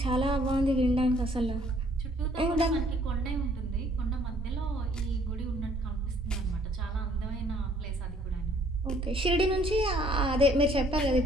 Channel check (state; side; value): normal; both; correlation 0.61